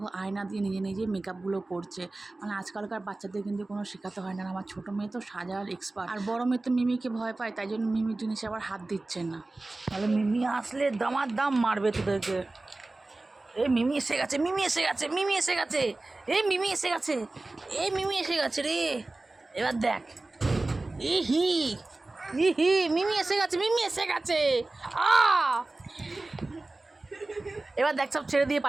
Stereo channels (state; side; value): quieter; left; 3.0 dB